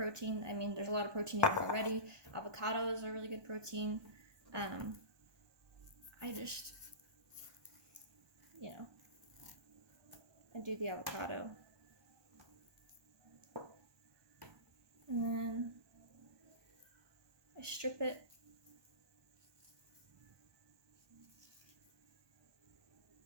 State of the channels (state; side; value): late; left; 1.2 ms